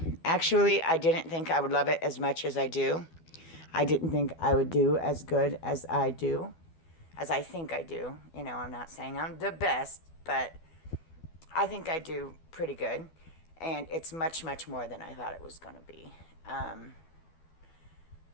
I didn't think I would love it as much as I do. I didn't think I would do as good as I do, as I think I do. You know, I'm not saying I'm the best, but I think I do pretty good. And it's much, much more than I thought it was going to be.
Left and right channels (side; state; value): right; late; 12 ms